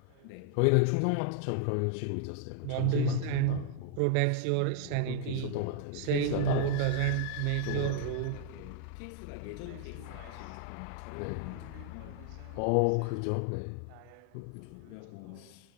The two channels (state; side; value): different; both; correlation 0.00